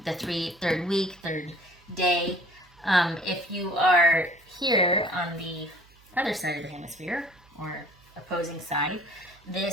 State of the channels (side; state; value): right; noise; hum, 28 dB below the sound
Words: the third week, third day. If you are here on the other side of the hemisphere, or opposing side,